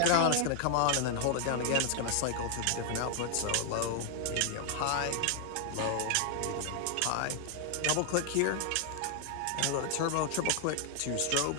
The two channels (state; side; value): different; both; correlation 0.00